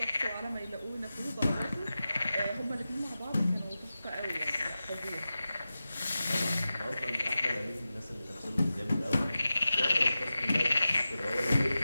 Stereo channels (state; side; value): inverted; both; correlation -0.94